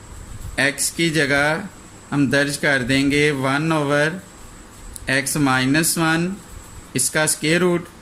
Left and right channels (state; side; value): identical; both; correlation 1.00